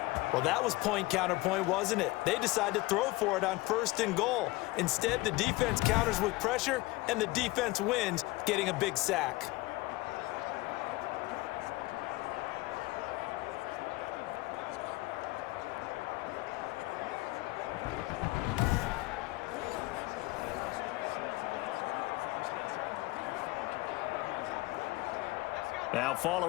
Well, that was point counterpoint, wasn't it? They decided to throw for it on 1st and goal. Instead, the defense counters with pressure, and the defense wins, getting a big sack. Now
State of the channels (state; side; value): quieter; right; 20.8 dB